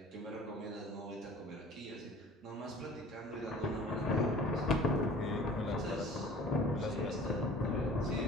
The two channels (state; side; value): normal; both; correlation 0.46